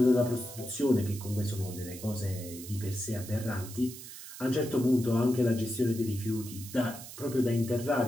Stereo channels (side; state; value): right; noise; hiss, 13 dB below the sound